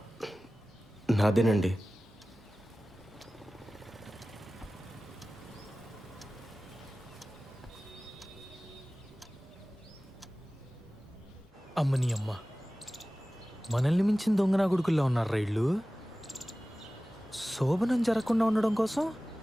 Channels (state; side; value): normal; both; correlation 0.97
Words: నాదేనండి. అమ్మని అమ్మ, మనల్ని మించిన దొంగనా కొడుకుల్లో ఉన్నారు రైళ్ళు. శోభనం జరగకుండా ఉండడం కోసం